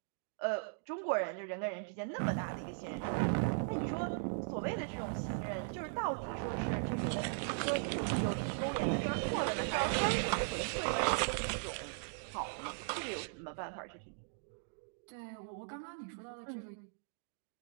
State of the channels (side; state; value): left; silent; digital silence